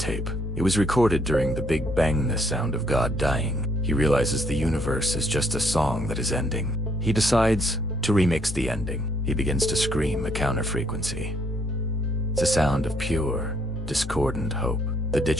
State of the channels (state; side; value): normal; both; correlation 0.68